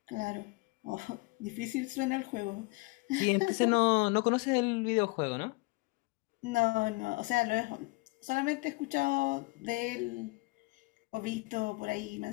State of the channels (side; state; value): right; quieter; 25.6 dB